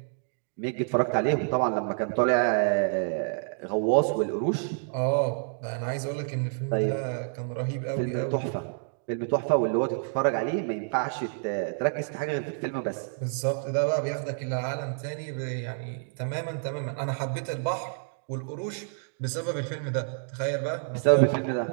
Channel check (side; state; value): left; silent; digital silence